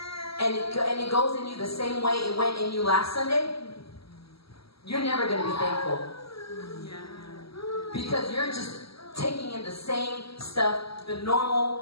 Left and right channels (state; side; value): late; right; 0.75 ms